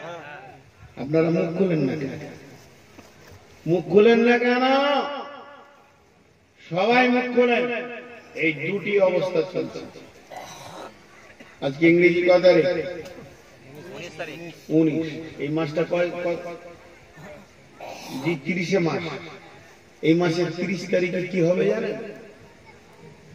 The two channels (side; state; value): both; identical; correlation 1.00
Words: আপনারা মুখ খুলেন না কেন? মুখ খুলেন না কেন? সবাই মুখ খোলেন। এই দুটি অবস্থা চলছে। আজকে ইংরেজি কত তারিখ? 19। এই মাসটা কয়? 30 মাস। এই মাসের 30 তারিখে কি হবে জানেন?